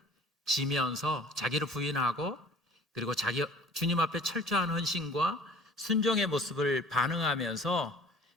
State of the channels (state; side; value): normal; both; correlation 0.48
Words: 지면서 자기를 부인하고, 그리고 주님 앞에 철저한 헌신과 순종의 모습을 반응하면서